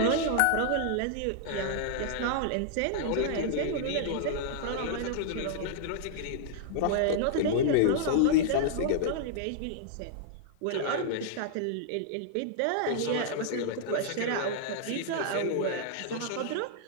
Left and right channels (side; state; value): both; different; correlation -0.01